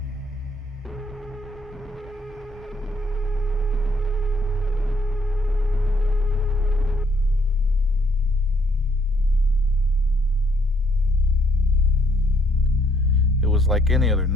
It was like any other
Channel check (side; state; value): both; normal; correlation 0.67